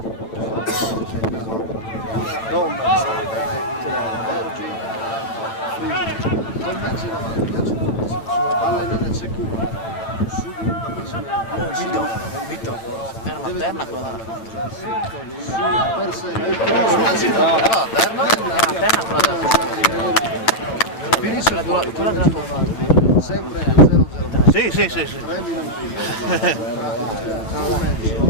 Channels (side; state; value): right; late; 8.9 ms